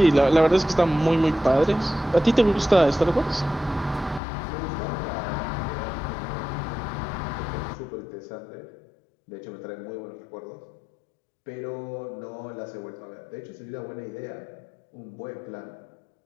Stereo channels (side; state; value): right; drops out; at 4.2 s